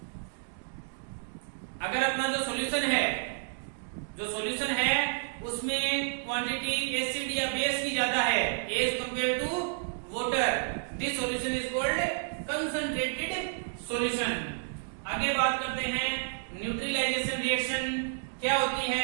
अगर अपना जो सॉल्यूशन है उसमें क्वांटिटी एसिड या बेस की ज्यादा है as compare to water, this solution is called concentrated solution. आगे बात करते हैं न्यूट्रलाइजेशन रिएक्शन। क्या होती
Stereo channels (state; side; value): silent; left; digital silence